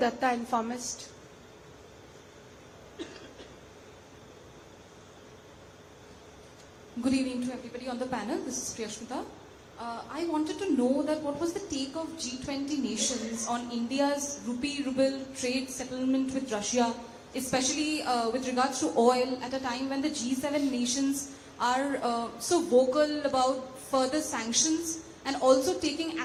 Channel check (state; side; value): identical; both; correlation 1.00